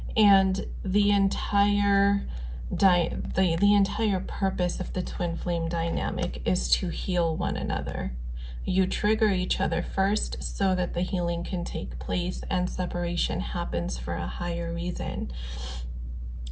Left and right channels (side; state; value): both; identical; correlation 1.00